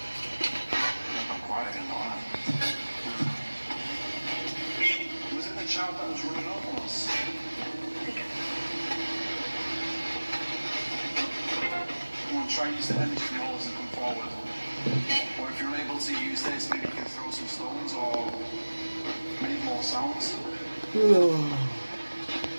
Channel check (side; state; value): both; inverted; correlation -1.00